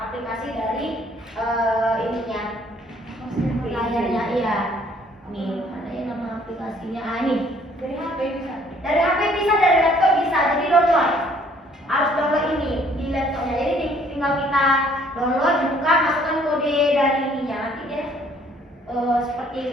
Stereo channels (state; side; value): normal; both; correlation 0.60